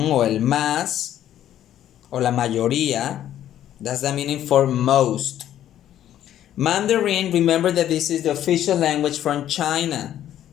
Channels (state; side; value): quieter; right; 11.5 dB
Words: el más, o la mayoría. That's the meaning for most. Mandarin, remember that this is the official language from China.